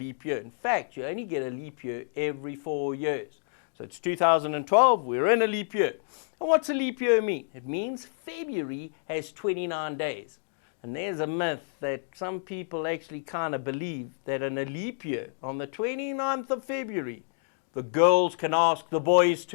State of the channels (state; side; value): silent; right; digital silence